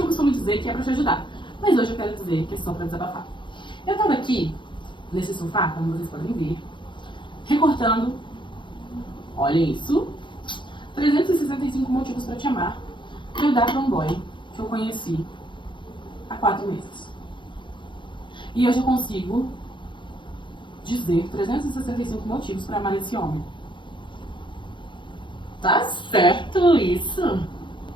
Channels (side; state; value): right; late; 0.23 ms